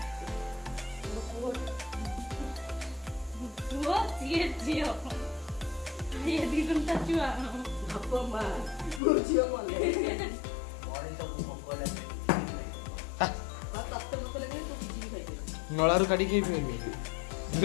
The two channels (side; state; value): right; drops out; at 9.0 s